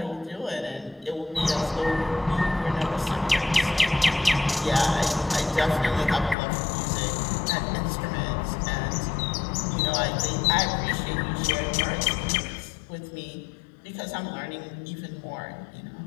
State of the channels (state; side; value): drops out; right; at 6.4 s